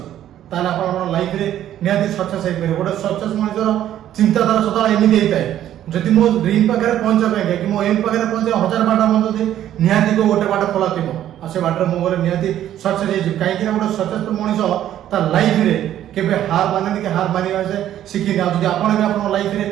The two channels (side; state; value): left; quieter; 11.7 dB